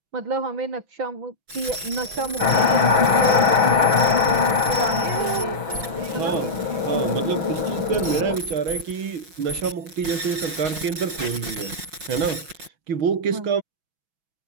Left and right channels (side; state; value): left; late; 5.6 ms